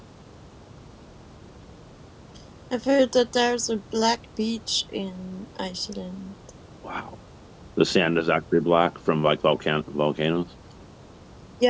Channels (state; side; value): identical; both; correlation 1.00